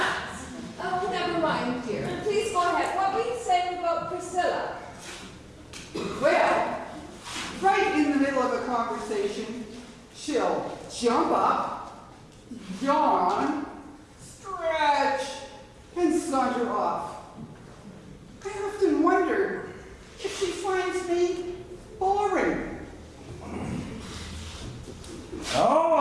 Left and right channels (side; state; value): both; identical; correlation 1.00